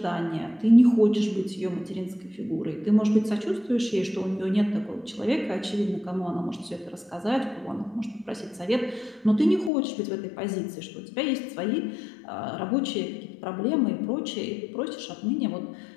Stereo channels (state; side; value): drops out; right; at 9.7 s